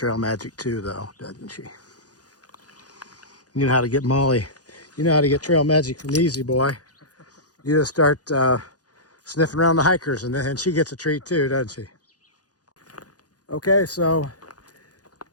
magic too, though, doesn't she? You know how to get Molly. You know how to get trail magic from Easy Boy. You just start sniffing around the hikers, and then she gets a treat too, doesn't she? Okay, so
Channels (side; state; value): right; late; 0.68 ms